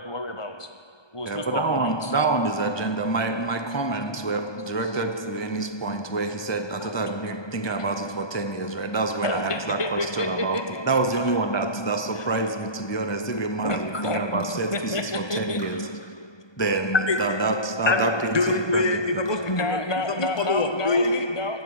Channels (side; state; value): right; late; 1.2 ms